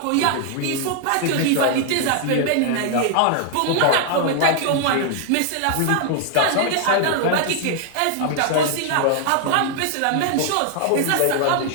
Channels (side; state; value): both; different; correlation 0.00